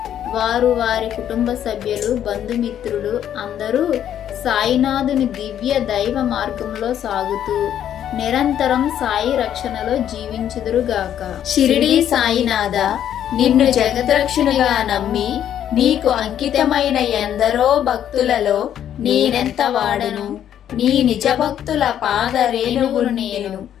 వారు వారి కుటుంబ సభ్యులు బంధుమిత్రులు అందరూ సాయినాథుని దివ్య దైవ మార్గంలో సాగుతూ నిరంతరం సాయి రక్షణలో జీవించుదురుగాక. షిరిడీ సాయినాథ, నిన్ను జగద్రక్షునిగా నమ్మి నీకు అంకితమైన ఎందరో భక్తులలో నేనెంత వాడను. నీ నిజ భక్తుల పాద రేణువును నేను.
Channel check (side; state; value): right; quieter; 10.2 dB